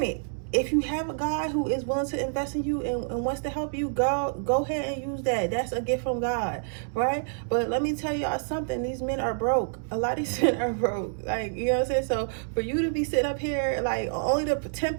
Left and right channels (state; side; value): silent; left; digital silence